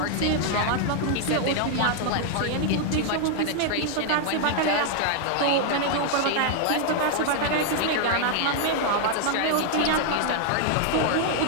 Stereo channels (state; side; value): different; both; correlation 0.00